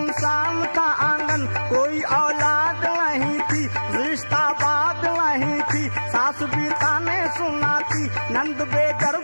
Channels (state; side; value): inverted; both; correlation -1.00